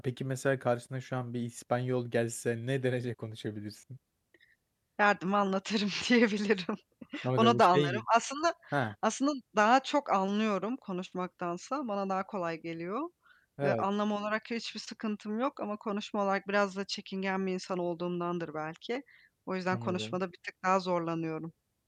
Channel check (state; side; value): identical; both; correlation 1.00